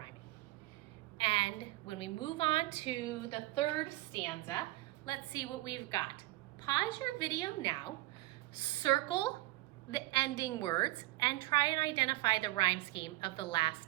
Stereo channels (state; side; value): quieter; left; 18.9 dB